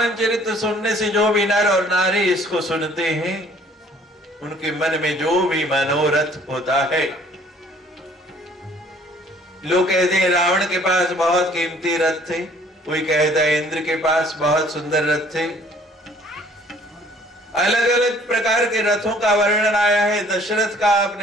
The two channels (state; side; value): normal; both; correlation 0.57